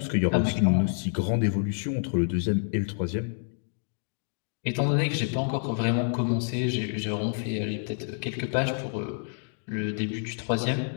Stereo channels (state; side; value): silent; right; digital silence